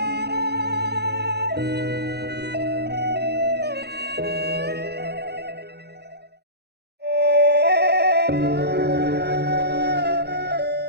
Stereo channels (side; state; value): left; late; 0.48 ms